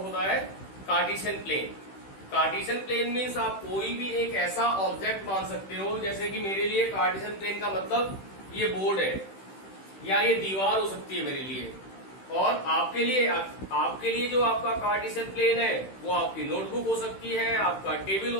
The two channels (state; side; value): late; right; 16 ms